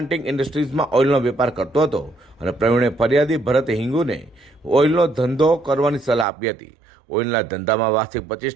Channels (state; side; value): drops out; left; at 6.2 s